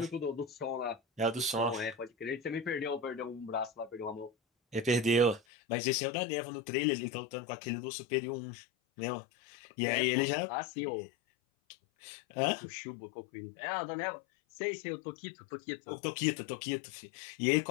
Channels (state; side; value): drops out; right; at 5.4 s